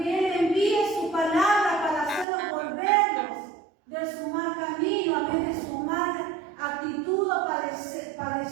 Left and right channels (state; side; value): drops out; left; at 2.2 s